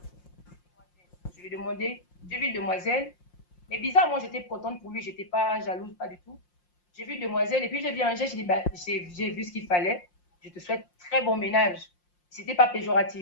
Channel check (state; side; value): late; right; 5.7 ms